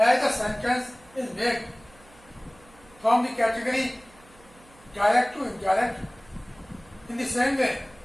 the sentence is made from the category direct to indirect, in the same way,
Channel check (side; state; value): right; noise; hum, 26 dB below the sound